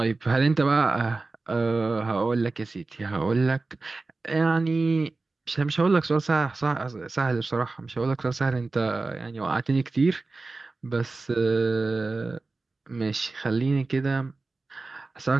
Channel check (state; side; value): quieter; left; 3.5 dB